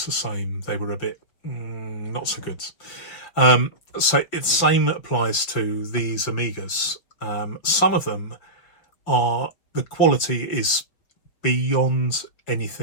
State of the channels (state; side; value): late; right; 6.2 ms